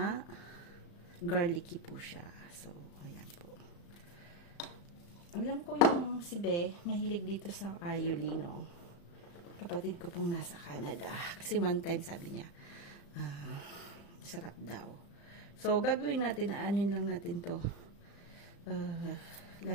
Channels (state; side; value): late; right; 35 ms